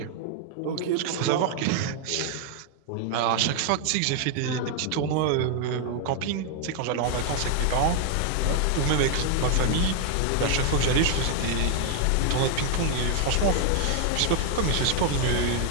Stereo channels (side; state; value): both; different; correlation 0.00